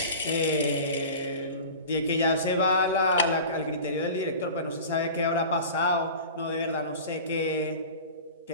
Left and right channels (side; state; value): both; inverted; correlation -0.36